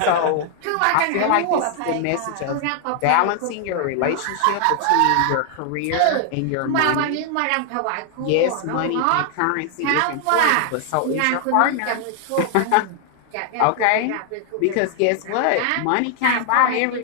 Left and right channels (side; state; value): both; different; correlation 0.00